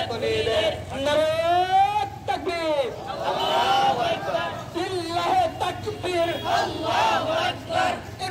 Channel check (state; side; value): identical; both; correlation 1.00